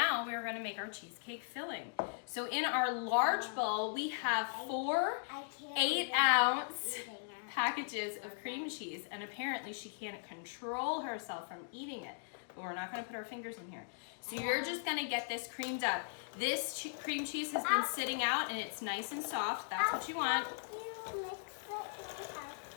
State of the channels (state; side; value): silent; right; digital silence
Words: we're going to make our cheesecake filling. So in our large bowl, we have 4 I can't 8-ounce eating it. packages of cream cheese, and apparently she can't control herself from eating it, but we're not going to put our fingers in here. So you're just going to get this creamed up. This cream cheese has been sitting out and it's nice and soft. That's what you want. You mix it with